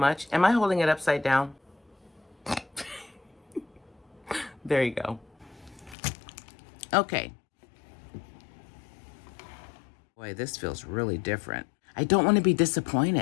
Am I holding it upside down? There you go. Okay. Boy, this feels really different. I don't want to be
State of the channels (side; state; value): right; drops out; at 6.0 s